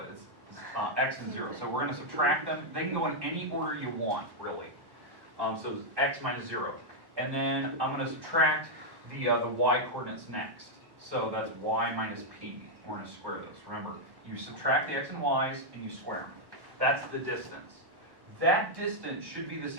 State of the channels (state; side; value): late; left; 1.1 ms